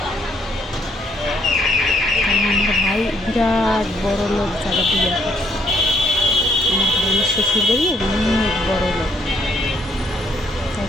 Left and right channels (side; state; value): both; normal; correlation 0.70